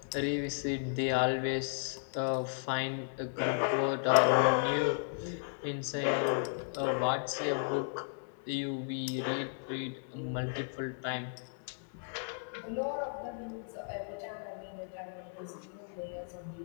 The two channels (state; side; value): silent; right; digital silence